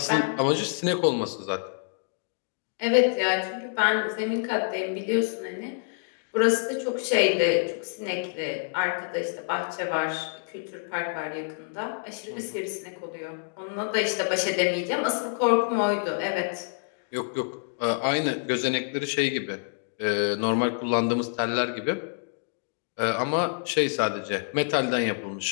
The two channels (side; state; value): right; silent; digital silence